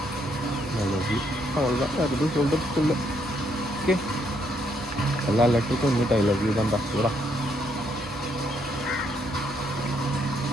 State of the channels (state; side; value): normal; both; correlation 0.73